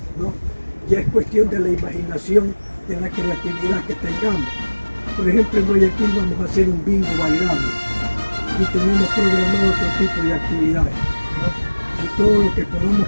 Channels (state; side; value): inverted; both; correlation -1.00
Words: ¿no? Ya es cuestión de la imaginación, de la creatividad que tengamos. Por ejemplo, en Guayaquil vamos a hacer un bingo bailable y tenemos programado otro tipo de actividades, ¿no? Y todo lo que podamos